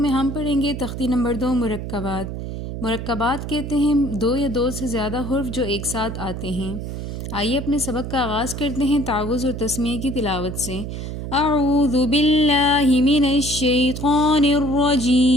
हम पढ़ेंगे तख्ती नंबर 2 मुरक्कबात। मुरक्कबात कहते हैं दो या दो से ज़्यादा हुर्फ जो एक साथ आते हैं। आइए अपने सबक का आगाज़ करते हैं तावुज़ और तस्मीह की तिलावत से। अऊज़ु बिल्लाहि मिनश शैतानिर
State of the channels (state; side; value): noise; right; hum, 6 dB below the sound